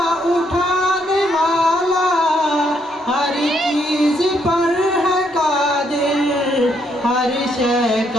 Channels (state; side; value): normal; both; correlation 0.73